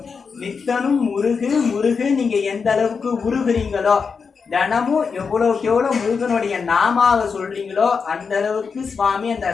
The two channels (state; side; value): quieter; right; 5.5 dB